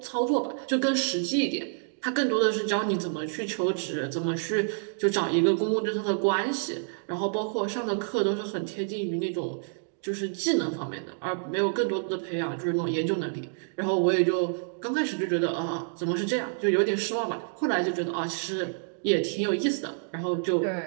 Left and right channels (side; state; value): left; silent; digital silence